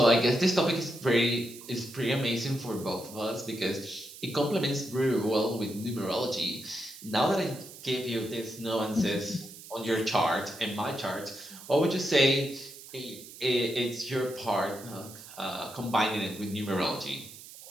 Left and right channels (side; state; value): right; noise; hiss, 16 dB below the sound